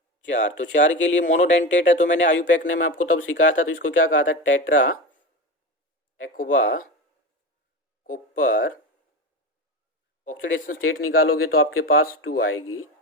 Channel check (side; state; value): both; normal; correlation 0.25